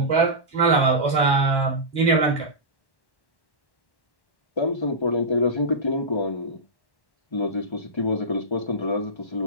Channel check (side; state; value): right; late; 1.1 ms